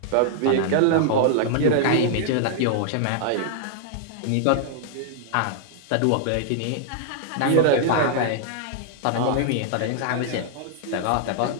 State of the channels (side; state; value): both; different; correlation -0.01